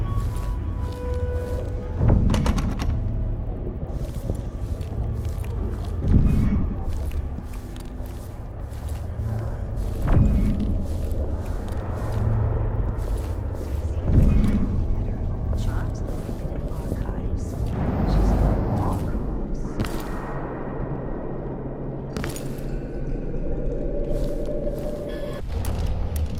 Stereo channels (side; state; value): both; identical; correlation 1.00